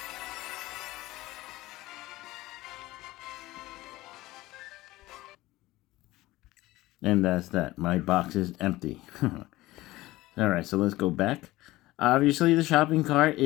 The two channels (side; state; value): right; quieter; 18.2 dB